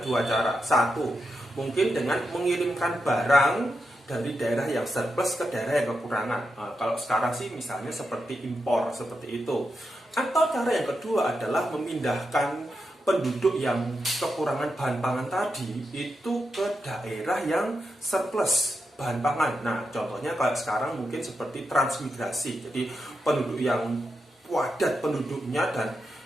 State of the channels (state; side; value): normal; both; correlation 0.86